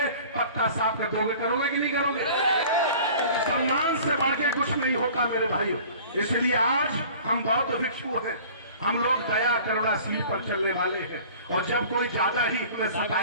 पक्का साफ कर दोगे, करोगे कि नहीं करोगे? सम्मान से बढ़ के कुछ नहीं होता मेरे भाइयों। इसलिए आज हम बौद्ध भिक्षु हैं, हम लोग दया करुणा सील पर चलने वाले हैं, और जब कोई ज्यादा ही हमें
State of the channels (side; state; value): both; inverted; correlation -0.45